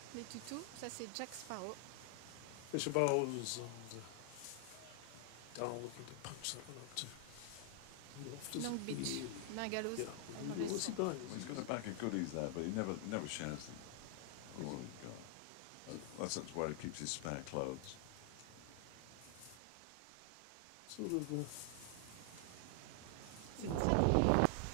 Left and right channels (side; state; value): both; different; correlation 0.00